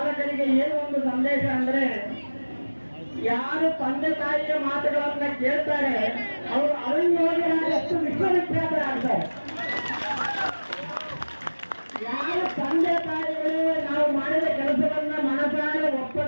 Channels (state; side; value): inverted; both; correlation -1.00